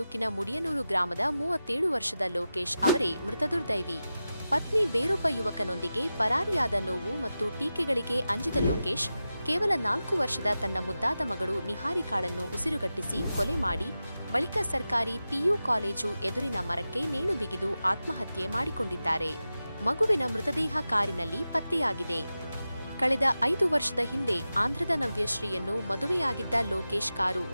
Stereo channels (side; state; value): both; inverted; correlation -0.93